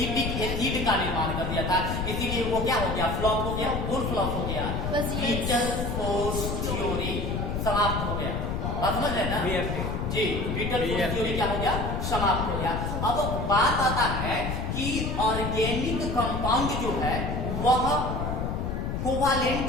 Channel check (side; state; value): left; noise; rumble, 2 dB below the sound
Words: एसिड का निर्माण कर दिया था। इसीलिए वो क्या हो गया? फ्लॉप हो गया। कौन फ्लॉप हो गया? विटल फोर्स थ्योरी समाप्त हो गया। बात समझ रहे हैं ना? जी, विटल फोर्स थ्योरी क्या हो गया? समाप्त हो गया। अब बात आता है कि ऑर्गेनिक कंपाउंड जो है वह कोवैलेंट